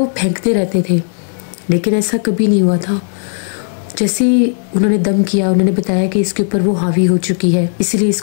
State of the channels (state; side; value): silent; right; digital silence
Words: वो फेंकते रहते थे, लेकिन ऐसा कभी नहीं हुआ था। जैसे ही उन्होंने दम किया उन्होंने बताया कि इसके ऊपर वो हावी हो चुकी है, इसलिए